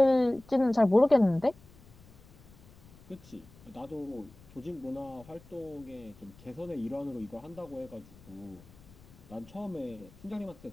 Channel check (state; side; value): noise; left; rumble, 23 dB below the sound